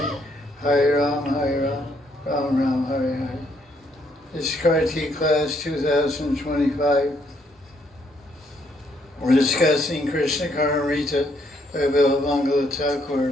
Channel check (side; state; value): both; normal; correlation 0.71